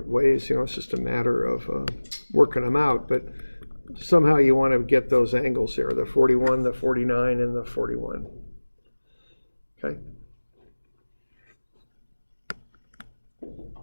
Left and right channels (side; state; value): both; inverted; correlation -1.00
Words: ways, you know, it's just a matter of working them out, but somehow you want to get those angles there, the 41, the 49, and the 41. Okay.